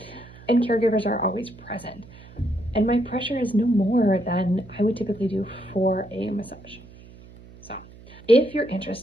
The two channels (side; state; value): right; noise; hum, 20 dB below the sound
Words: and caregivers are always present. And my pressure is no more than I would typically do for a massage. So if you're